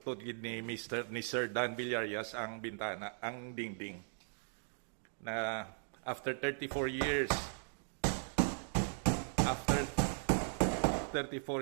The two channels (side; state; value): left; silent; digital silence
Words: naputod gid ni Sir Dan Villarias ang bintana, ang dingding. Na after 34 years, after